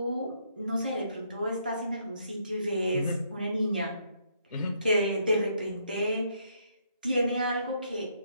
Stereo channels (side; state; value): both; inverted; correlation -0.72